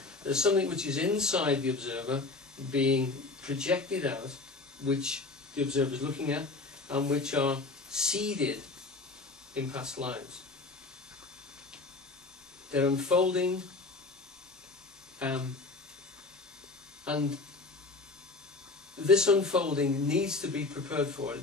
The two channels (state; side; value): quieter; right; 3.6 dB